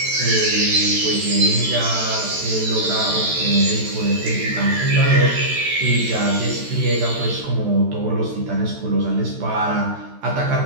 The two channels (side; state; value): left; late; 13 ms